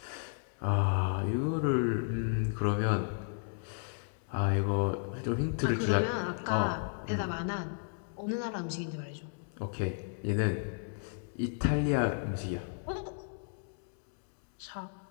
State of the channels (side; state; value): right; silent; digital silence